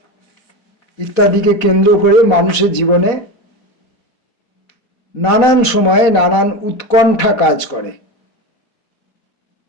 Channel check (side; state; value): right; late; 4.2 ms